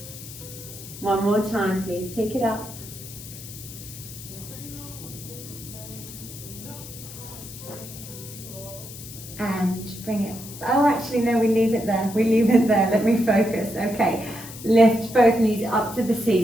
1 more time, please. Take it up. And bring it. Oh, actually, no, we leave it there. We leave it there. Let me focus. Okay. Lift both knees up to the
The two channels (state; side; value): noise; left; hiss, 14 dB below the sound